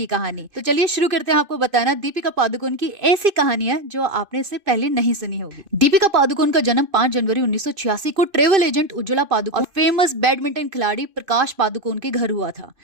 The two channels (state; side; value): late; left; 2.5 ms